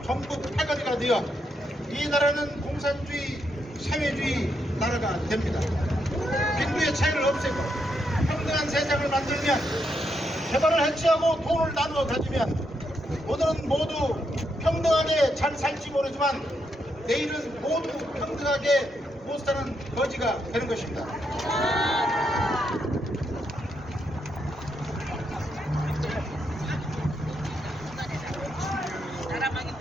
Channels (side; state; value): both; normal; correlation 0.80